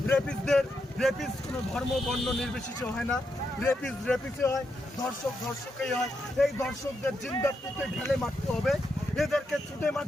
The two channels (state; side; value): normal; both; correlation 0.83